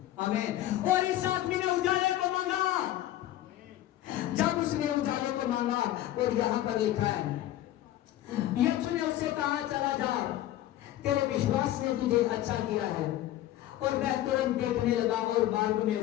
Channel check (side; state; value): right; quieter; 13.8 dB